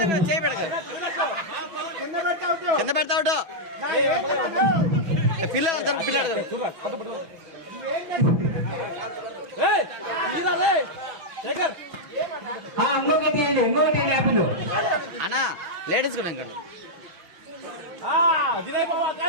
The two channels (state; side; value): late; left; 6.1 ms